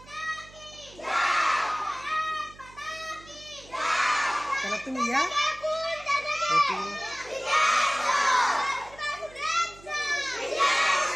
चला तुम्ही या.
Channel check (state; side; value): noise; right; hum, 22 dB below the sound